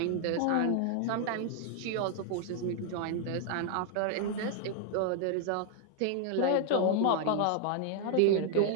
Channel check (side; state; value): both; different; correlation 0.00